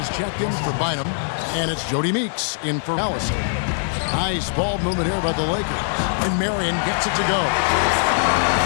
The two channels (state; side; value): silent; right; digital silence